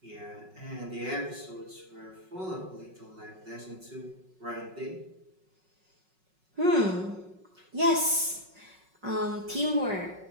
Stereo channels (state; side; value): late; left; 5.4 ms